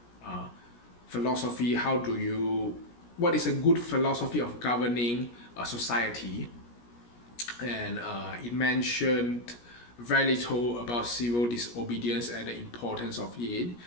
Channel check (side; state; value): right; late; 17 ms